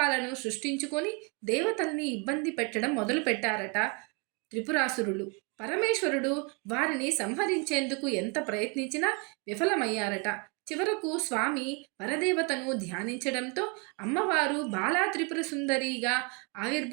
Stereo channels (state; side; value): quieter; left; 33.3 dB